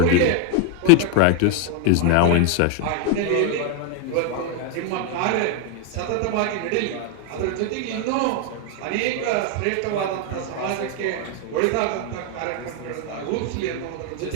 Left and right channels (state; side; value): different; both; correlation 0.01